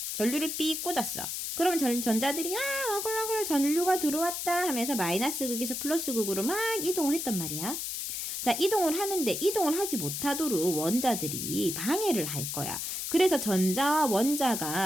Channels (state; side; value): noise; left; hiss, 4 dB below the sound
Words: 전류를 삐 꽂았어. 그러면 전자들이 어글어글 전류가 들어왔다 하면서 마이너스 극에서 플러스 극으로 막 이동을 했단 말이야. 자, 이동을 하는데 이동을 하지 못하도록 원자들이 방해를 할 거야. 그래서 전자와